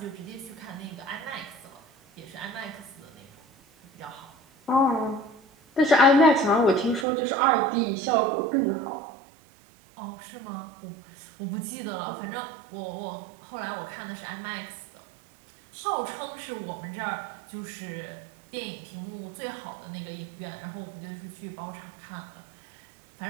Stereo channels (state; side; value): drops out; left; at 7.1 s